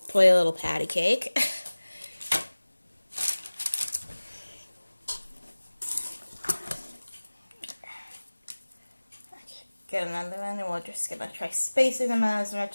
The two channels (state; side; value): inverted; both; correlation -1.00